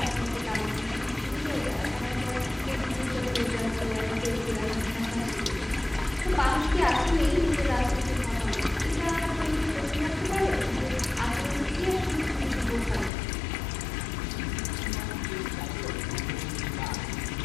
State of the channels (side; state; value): right; drops out; at 13.1 s